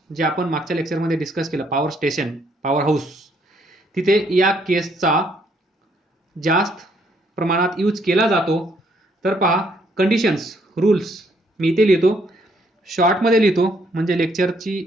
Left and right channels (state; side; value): normal; both; correlation 0.69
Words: जे आपण मागच्या लेक्चरमध्ये डिस्कस केलं, पॉवर स्टेशन, पॉवर हाऊस, तिथे या केसचा जास्त प्रमाणात यूज केला जातो. तर पहा कंडिशन्स, रूल्स मी इथे लिहितो, शॉर्टमध्ये लिहितो म्हणजे